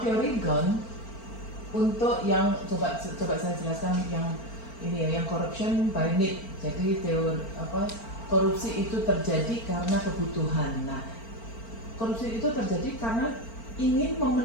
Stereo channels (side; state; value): right; late; 4.4 ms